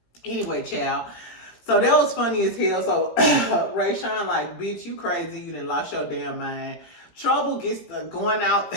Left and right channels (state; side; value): late; right; 18 ms